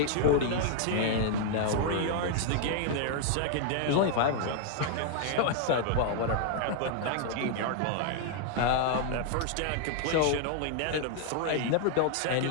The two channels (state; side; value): different; both; correlation 0.00